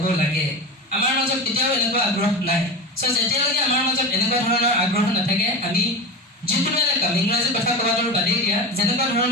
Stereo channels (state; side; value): normal; both; correlation 0.24